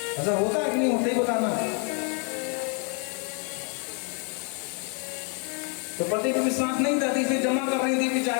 होता है कि नहीं होता ही बताना। तो पति को विश्वास नहीं था, इसे जमा कर रही थी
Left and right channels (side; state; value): right; quieter; 38.8 dB